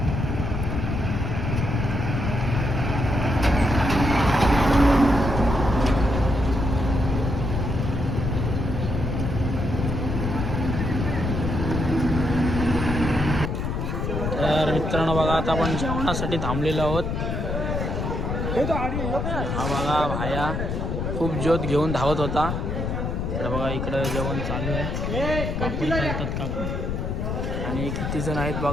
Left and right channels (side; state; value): left; noise; rumble, 2 dB below the sound